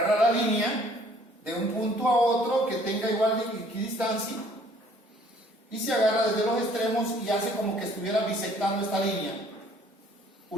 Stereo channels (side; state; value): both; normal; correlation 0.58